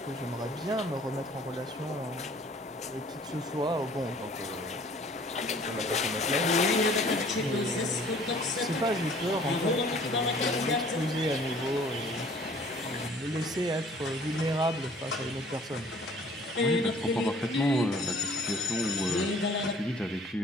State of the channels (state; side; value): normal; both; correlation 0.54